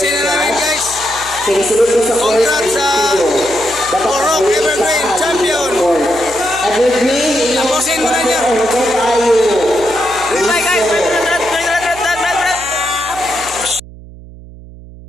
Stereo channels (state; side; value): noise; right; hum, 18 dB below the sound